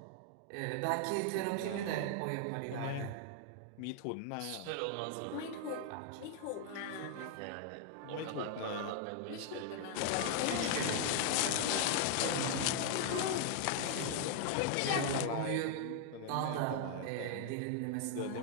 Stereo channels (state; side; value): different; both; correlation 0.00